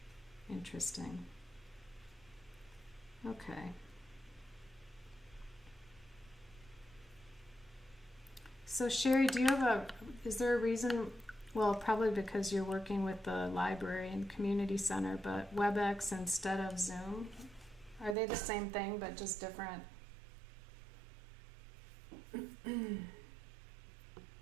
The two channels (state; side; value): drops out; left; at 18.2 s